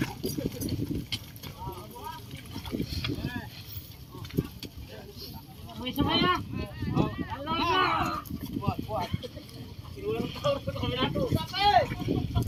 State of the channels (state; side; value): identical; both; correlation 1.00